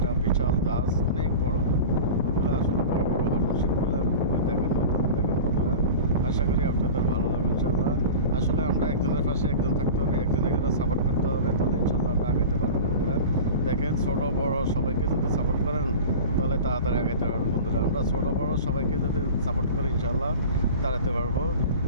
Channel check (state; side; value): inverted; both; correlation -0.34